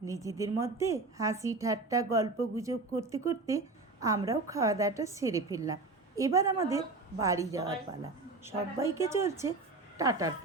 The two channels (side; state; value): left; quieter; 3.4 dB